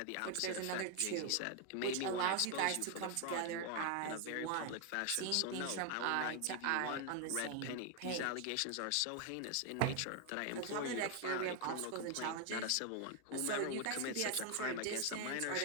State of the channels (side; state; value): both; different; correlation 0.00